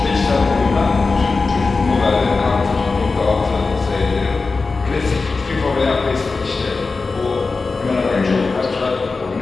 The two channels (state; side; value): quieter; right; 4.1 dB